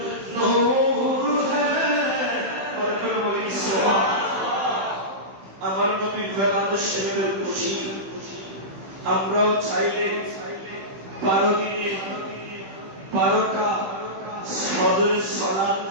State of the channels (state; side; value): late; left; 15 ms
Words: नूर है पर कोई सुभान আমার নবীর বেলাত শরীফের খুশি আমরাও চাইলে 12 দিনে 12টা ফজরের সালাত